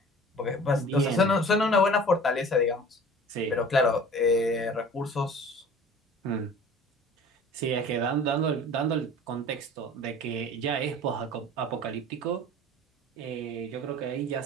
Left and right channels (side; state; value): both; normal; correlation 0.44